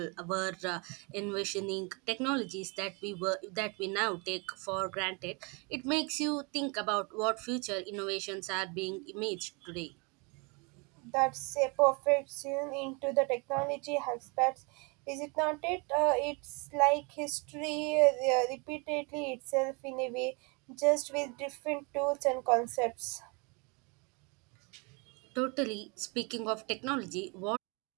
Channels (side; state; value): left; quieter; 31.3 dB